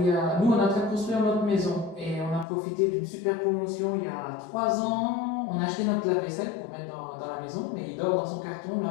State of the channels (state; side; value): drops out; right; at 2.5 s